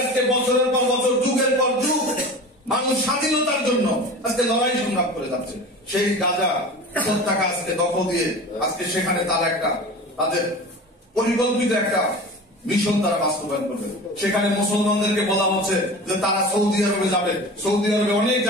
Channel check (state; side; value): normal; both; correlation 0.35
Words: আজকে বছরের পর বছর, যুগের পর যুগ মানুষ স্বাধীনতার জন্য আজকে লড়াই সংগ্রাম করে যাচ্ছে। সেই গাজা উপত্যকা আজকে দখল দিয়ে আজকে সেখানে তারা তাদের পরিকল্পিত একটা মিশন তারা বাস্তবায়ন করবে। সেখানে মুসলমানদেরকে বলা হচ্ছে যে তারা সৌদি আরবে যাবে, সৌদি আরবে অনেক